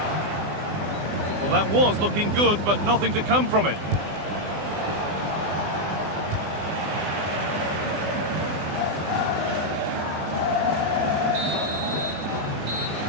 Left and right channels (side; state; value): left; late; 20 ms